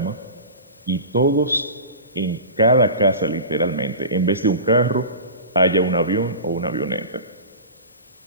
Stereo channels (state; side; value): inverted; both; correlation -0.33